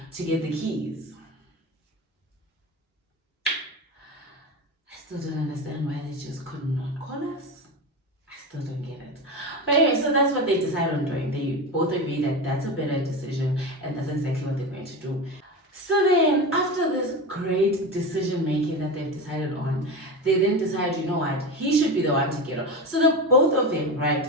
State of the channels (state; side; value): normal; both; correlation 0.23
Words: to get the keys. I still don't understand why they just could not call us. Still don't get it. But anyway, so that's what they decide on doing. They both agree that that's a better decision and that's exactly what they're going to do. So then, after this great decision making that they've decided on, they then decide, you know what, he should be the one to get on. So the both of them, right,